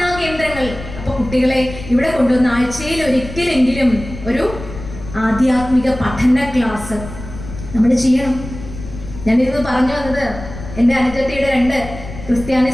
കേന്ദ്രങ്ങൾ. അപ്പൊ കുട്ടികളെ ഇവിടെ കൊണ്ടുവന്ന ആഴ്ചയിൽ ഒരിക്കലെങ്കിലും ഒരു ആധ്യാത്മിക പഠന ക്ലാസ് നമ്മൾ ചെയ്യണം. ഞാനിത് പറഞ്ഞു വന്നത്, എൻ്റെ അനുജത്തിയുടെ 2 ക്രിസ്ത്യാനി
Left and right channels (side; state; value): left; noise; rumble, 12 dB below the sound